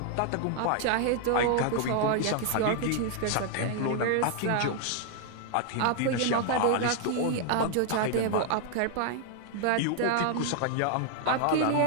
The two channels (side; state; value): both; different; correlation 0.00